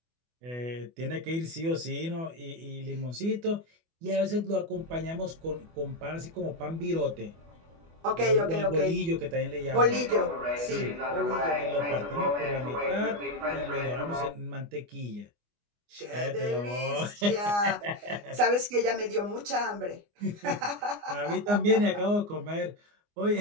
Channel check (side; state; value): left; late; 24 ms